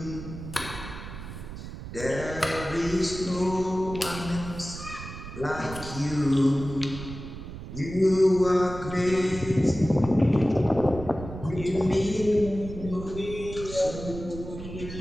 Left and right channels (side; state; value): right; noise; rumble, 11 dB below the sound